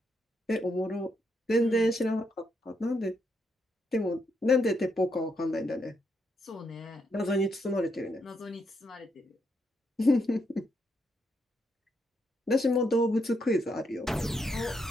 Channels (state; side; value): normal; both; correlation 0.78